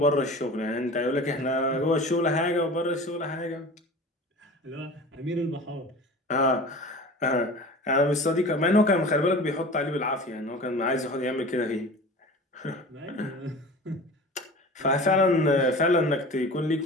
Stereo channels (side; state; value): both; normal; correlation 0.37